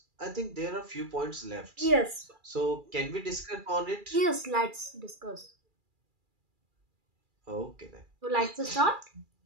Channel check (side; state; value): left; late; 2.4 ms